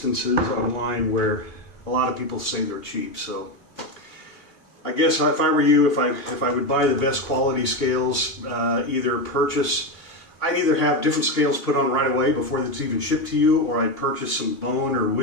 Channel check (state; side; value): late; right; 2.8 ms